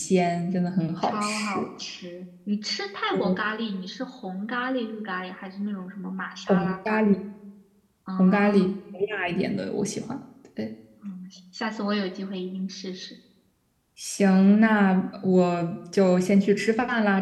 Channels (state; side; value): identical; both; correlation 1.00